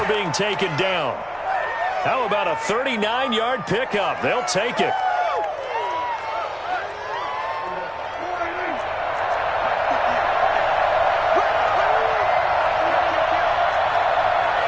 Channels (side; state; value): both; identical; correlation 1.00